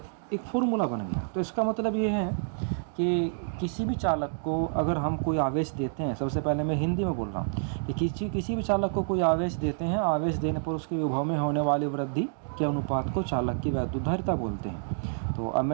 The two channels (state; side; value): silent; left; digital silence